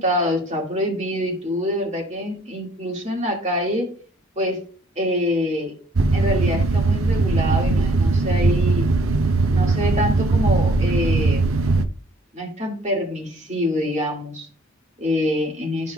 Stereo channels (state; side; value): normal; both; correlation 0.61